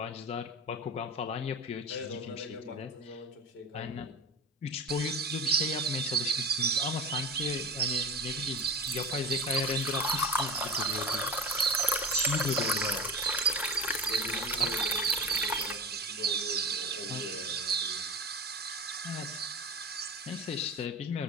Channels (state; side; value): normal; both; correlation 0.31